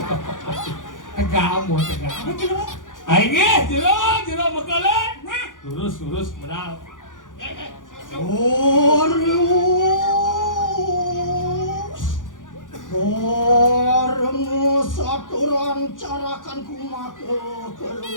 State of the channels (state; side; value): late; right; 0.88 ms